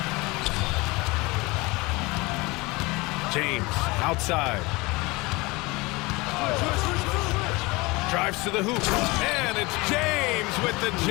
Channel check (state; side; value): quieter; right; 23.8 dB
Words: James outside. Drives to the hoop. And it's James with the